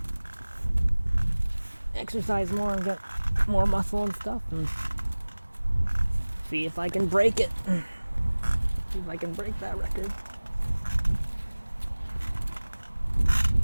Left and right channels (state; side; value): inverted; both; correlation -1.00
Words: exercise more and get more muscle and stuff, and see if I can break it. See if I can break that record.